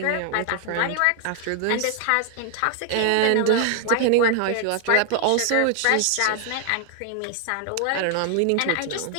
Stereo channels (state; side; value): different; both; correlation 0.00